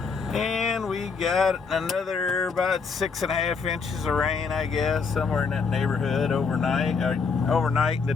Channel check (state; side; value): quieter; right; 5.1 dB